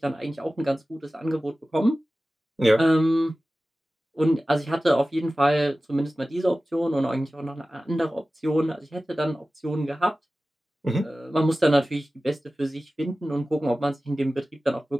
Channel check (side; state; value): both; normal; correlation 0.96